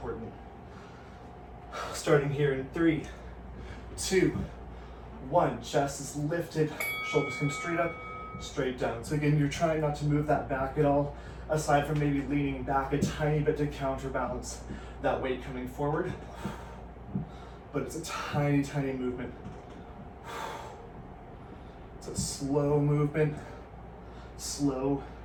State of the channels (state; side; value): identical; both; correlation 1.00